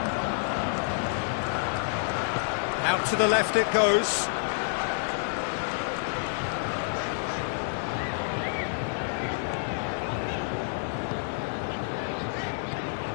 Out to the left it goes.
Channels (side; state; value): right; silent; 58 dB below the other